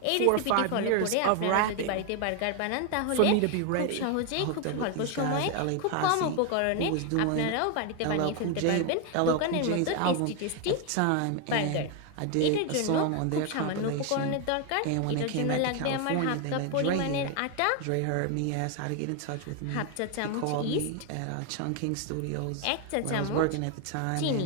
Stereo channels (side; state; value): both; different; correlation 0.01